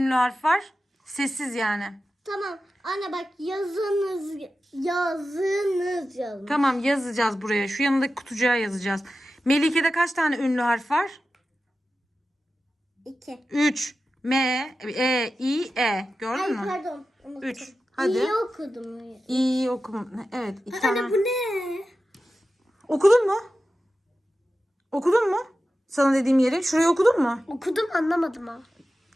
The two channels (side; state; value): both; normal; correlation 0.93